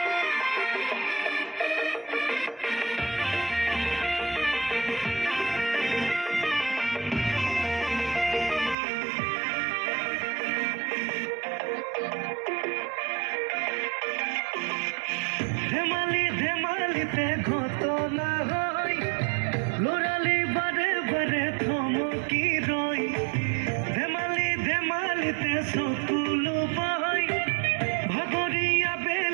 ধেমালি ধেমালিতে ঘটনা হয়, লৰালি বাৰে বাৰে থমকি ৰয়। ধেমালি ধেমালিতে চকুলো পায়, ভাগৰীয়া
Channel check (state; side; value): drops out; left; at 8.8 s